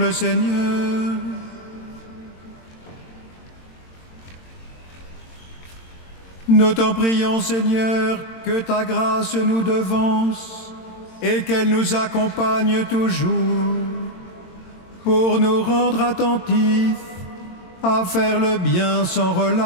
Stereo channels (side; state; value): right; late; 22 ms